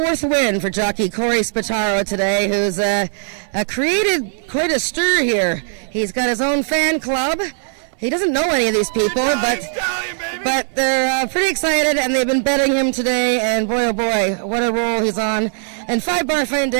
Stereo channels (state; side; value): silent; left; digital silence